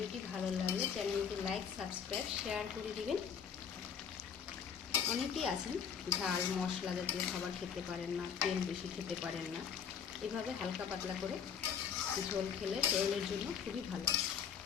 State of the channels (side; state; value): right; quieter; 7.3 dB